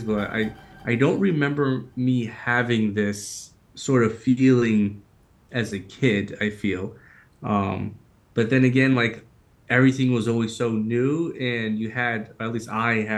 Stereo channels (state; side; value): identical; both; correlation 1.00